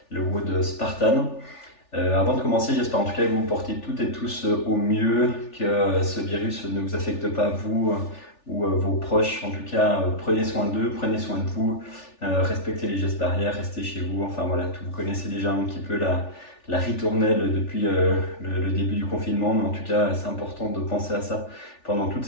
le WOD Spartan. Avant de commencer, j'espère en tout cas que vous vous portez toutes et tous au mieux, que ce virus ne vous affecte pas vous ou vos proches. En tout cas, prenez soin d'eux, prenez soin de vous, respectez les gestes barrières, restez chez vous. Enfin voilà, vous connaissez déjà un petit peu la ritournelle depuis le début du confinement, mais en tout cas, c'est important de penser à ça pendant toute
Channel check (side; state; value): right; late; 3.4 ms